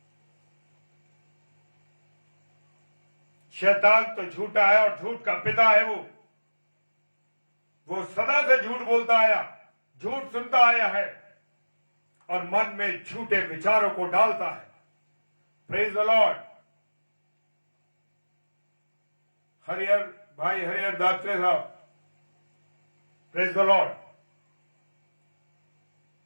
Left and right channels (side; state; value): both; inverted; correlation -1.00